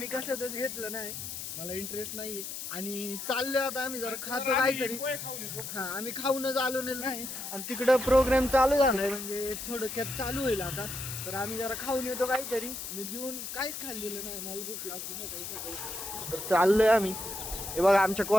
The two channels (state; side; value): noise; left; hiss, 7 dB below the sound